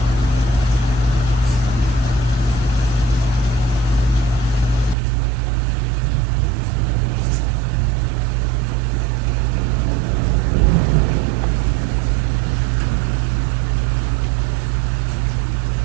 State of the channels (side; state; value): left; drops out; at 5.0 s